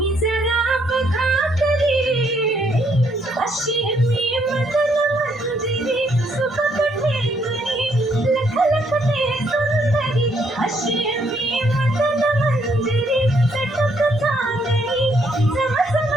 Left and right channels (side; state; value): both; normal; correlation 0.71